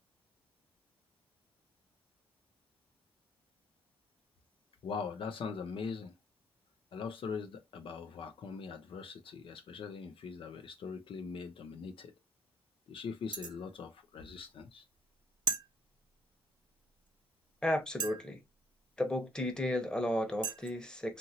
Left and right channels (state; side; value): normal; both; correlation 0.63